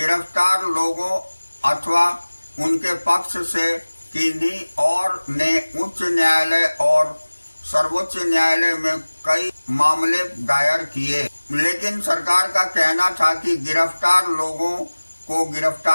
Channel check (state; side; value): inverted; both; correlation -1.00